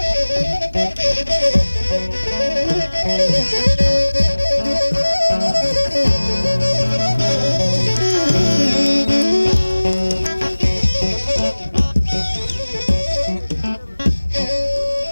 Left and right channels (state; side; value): inverted; both; correlation -1.00